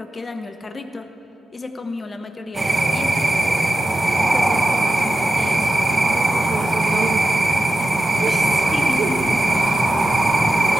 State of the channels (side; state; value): both; normal; correlation 0.91